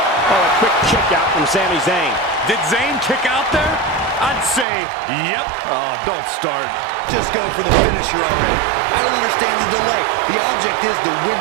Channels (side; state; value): left; drops out; at 4.7 s